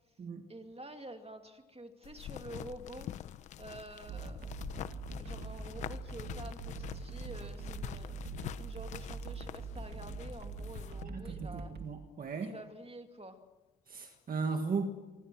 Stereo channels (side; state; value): both; normal; correlation 0.59